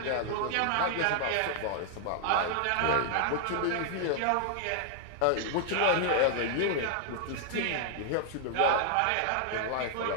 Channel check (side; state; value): both; different; correlation 0.00